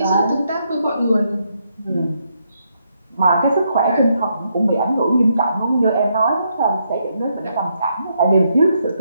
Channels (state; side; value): inverted; both; correlation -0.77